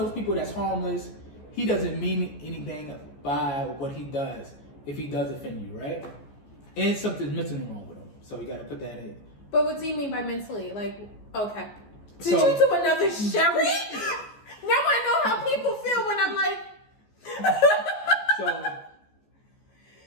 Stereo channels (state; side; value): late; right; 14 ms